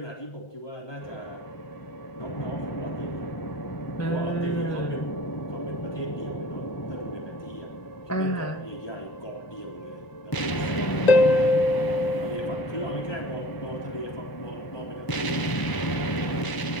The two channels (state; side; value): late; right; 1.0 ms